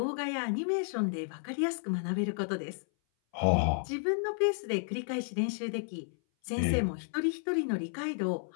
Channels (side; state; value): right; silent; 56 dB below the other